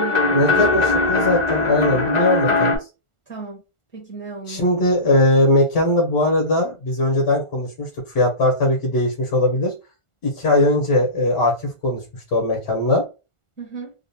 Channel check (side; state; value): right; late; 1.4 ms